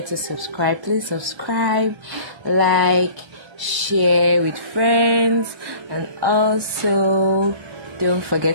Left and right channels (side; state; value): left; late; 1.1 ms